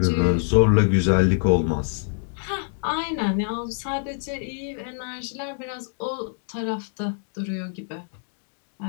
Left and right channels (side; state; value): right; silent; digital silence